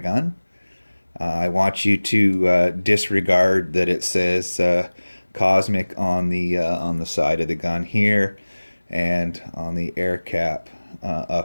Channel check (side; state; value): both; inverted; correlation -1.00